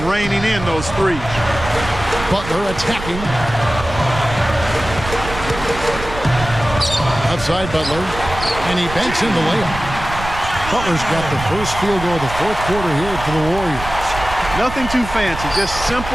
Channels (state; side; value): noise; right; rumble, 10 dB below the sound